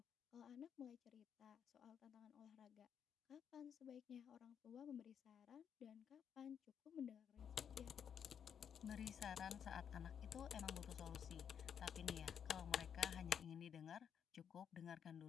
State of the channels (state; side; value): quieter; right; 8.0 dB